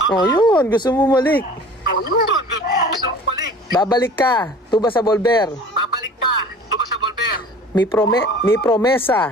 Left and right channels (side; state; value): both; normal; correlation 0.44